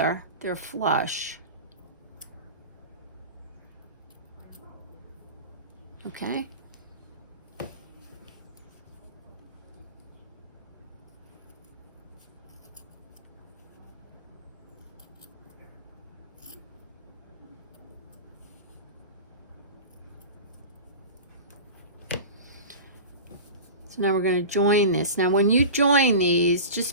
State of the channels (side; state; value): both; inverted; correlation -0.33